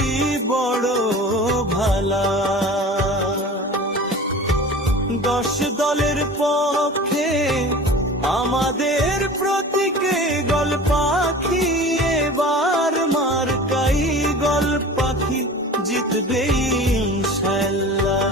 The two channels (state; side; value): normal; both; correlation 0.38